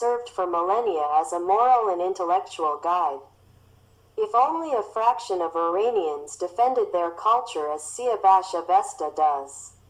for millennia as a moral and intellectual guide. If only a fraction of Iranians defended their culture as Siavash Ovasta does,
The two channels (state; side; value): identical; both; correlation 1.00